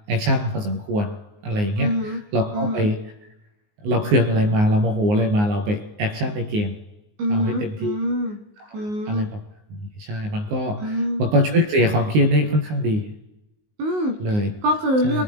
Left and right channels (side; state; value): left; late; 19 ms